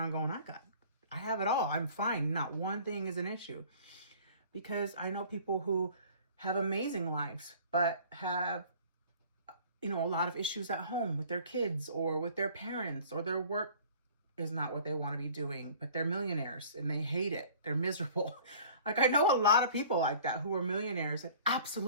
going, I have it all. I'm fine. Not one thing is an issue. Because I know people who have amazing lives, but have, you know, a lot of issues at home with their kids or with their parents, or their work is not what they want to be doing, but they're millionaires and they hate it. They're miserable. Like, I know a lot of people like that who are millionaires and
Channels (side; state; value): both; inverted; correlation -0.49